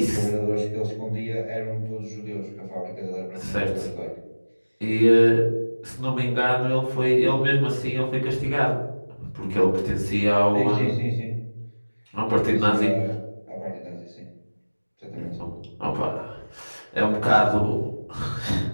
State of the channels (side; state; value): both; inverted; correlation -1.00